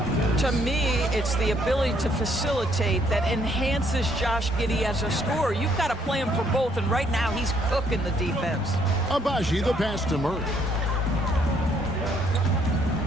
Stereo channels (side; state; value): both; normal; correlation 0.68